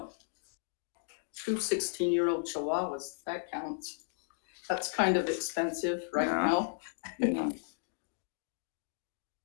2 16-year-old chihuahuas, that counts. That's kind of expensive right now. Yeah.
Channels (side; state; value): right; silent; digital silence